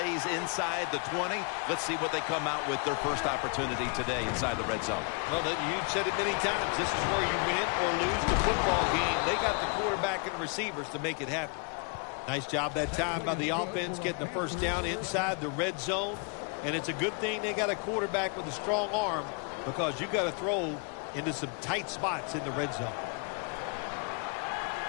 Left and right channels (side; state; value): right; quieter; 36.9 dB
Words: inside the 20. Let's see what they come out with their first opportunity today inside the red zone. Well, you said it many times. This is where you win or lose the football game. They got the quarterback and the receivers to make it happen. Nice job that time by the offense getting the first down inside the red zone. And it's a good thing they got a quarterback with a strong arm because you got to throw into some tight spots in the red zone.